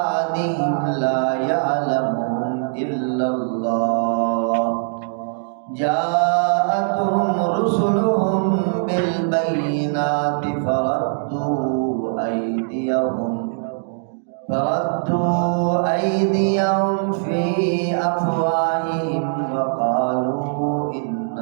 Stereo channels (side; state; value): left; silent; digital silence